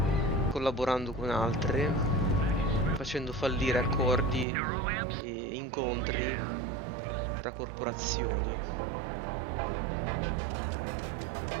collaborando con altre, facendo fallire accordi e incontri tra corporazioni.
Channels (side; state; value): left; drops out; at 4.5 s